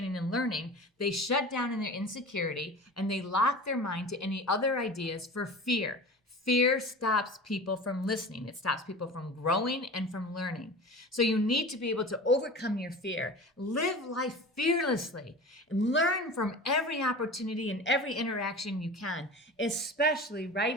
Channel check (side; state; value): both; normal; correlation 0.35